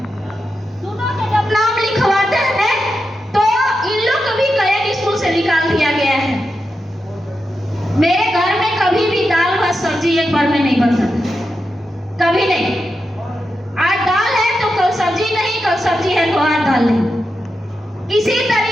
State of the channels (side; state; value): both; normal; correlation 0.88